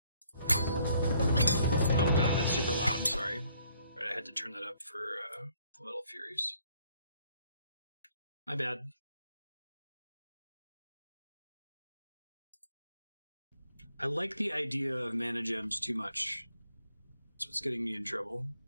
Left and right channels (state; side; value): inverted; both; correlation -0.65